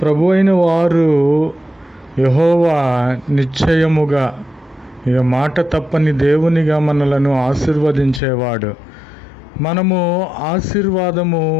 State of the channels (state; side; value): drops out; right; at 8.2 s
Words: ప్రభు అయిన వారు యెహోవా నిశ్చయముగా, ఇక మాట తప్పని దేవునిగా మనలను ఆశీర్వదించేవాడు. మనము ఆశీర్వాదము